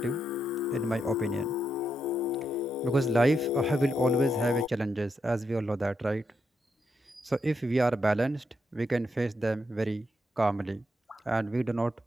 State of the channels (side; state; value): both; normal; correlation 0.82